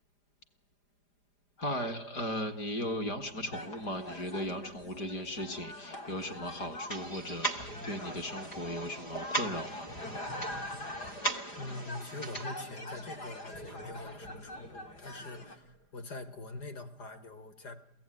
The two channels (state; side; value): late; right; 4.9 ms